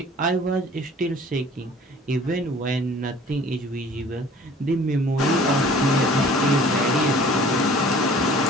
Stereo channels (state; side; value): normal; both; correlation 0.49